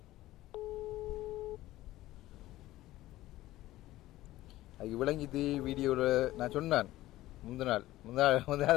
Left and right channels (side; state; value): right; quieter; 16.1 dB